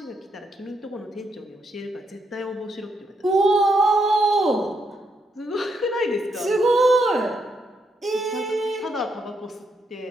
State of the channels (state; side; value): normal; both; correlation 0.78